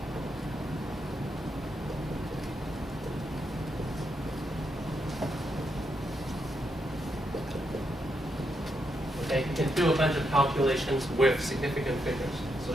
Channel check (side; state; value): both; normal; correlation 0.81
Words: Okay, you can do a bunch of calculations with significant figures. So